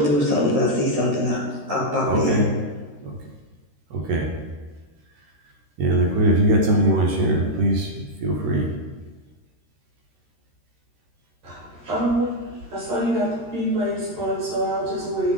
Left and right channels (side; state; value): left; late; 13 ms